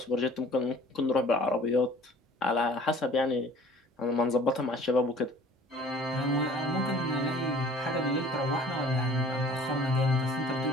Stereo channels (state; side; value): normal; both; correlation 0.50